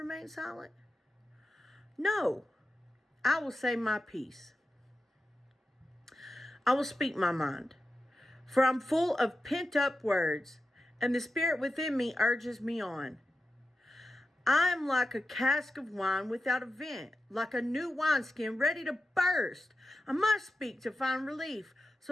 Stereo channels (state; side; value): normal; both; correlation 0.92